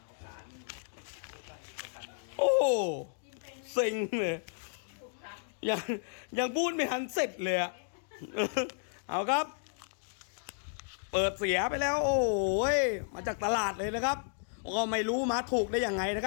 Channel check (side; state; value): right; silent; digital silence